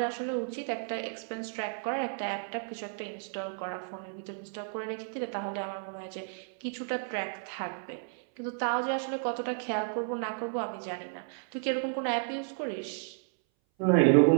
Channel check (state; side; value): silent; left; 56 dB below the other